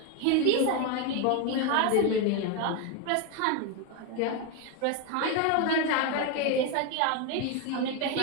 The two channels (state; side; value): different; both; correlation 0.02